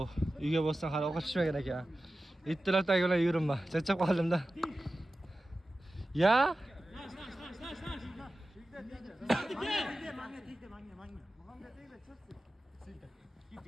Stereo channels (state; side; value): normal; both; correlation 0.94